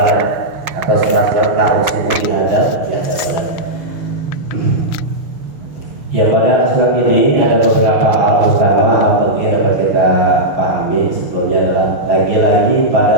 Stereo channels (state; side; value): late; left; 6.5 ms